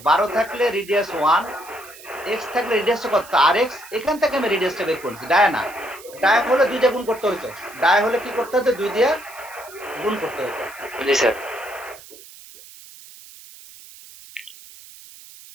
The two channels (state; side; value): noise; right; hiss, 19 dB below the sound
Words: 12 থাকলে রেডিয়াস 1, এক্স থাকলে রেডিয়াসটা কত? আর এক্স। এখান থেকে আমি রেডিয়াসটা বের করছি, ডায়া না। ডায়া হলে 2 দিয়ে গুণ করতে হতো, ডায়া হলে কি করতে হতো? 2 দিয়ে গুণ করতে হতো। জি স্যার।